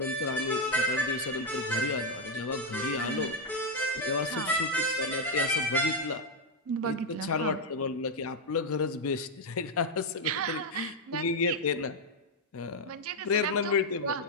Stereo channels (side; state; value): both; normal; correlation 0.01